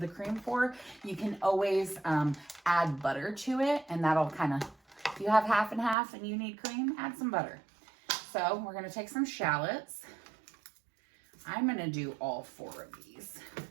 cream for, you can always add butter to it. And that'll kind of, if you have half and half and you need cream, add some butter. So we're going to take some shallots. I'm going to do all 4 of these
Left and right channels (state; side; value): drops out; left; at 6.0 s